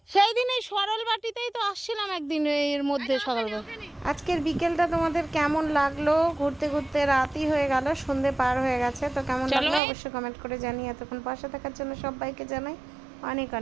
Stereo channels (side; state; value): left; drops out; at 9.8 s